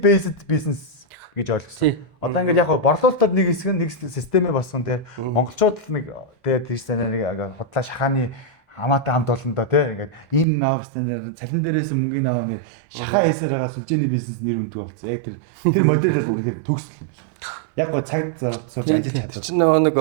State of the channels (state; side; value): drops out; left; at 10.5 s